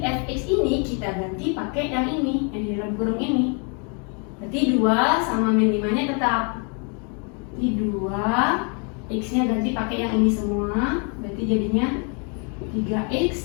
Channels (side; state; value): right; quieter; 37.4 dB